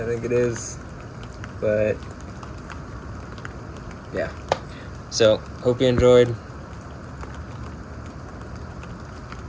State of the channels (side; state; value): both; identical; correlation 1.00